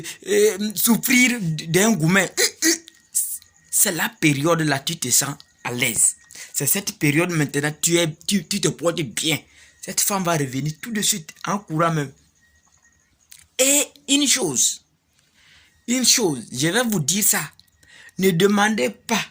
souffrir d'un gourmet. C'est la période là, tu te sens à l'aise. C'est cette période maintenant, tu te portes bien. Cette femme va revenir tout de suite, en courant même. Et une chose, je vais vous dire ça. Ne demandez pas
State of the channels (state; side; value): identical; both; correlation 1.00